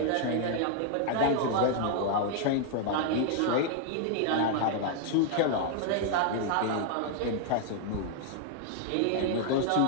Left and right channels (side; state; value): both; different; correlation 0.00